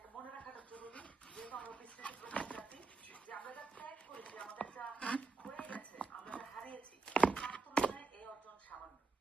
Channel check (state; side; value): quieter; left; 4.3 dB